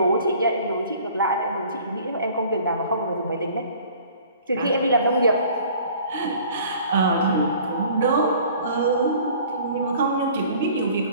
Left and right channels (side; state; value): both; inverted; correlation -0.50